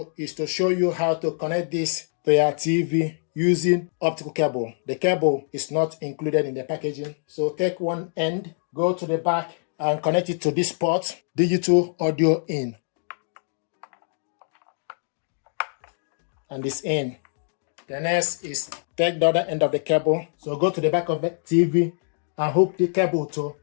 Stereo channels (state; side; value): silent; right; digital silence